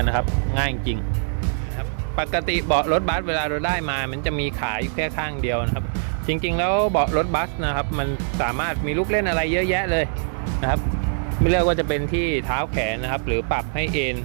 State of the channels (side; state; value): left; silent; 63 dB below the other